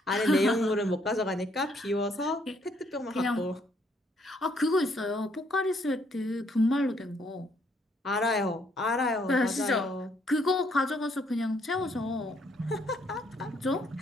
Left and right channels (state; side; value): normal; both; correlation 0.69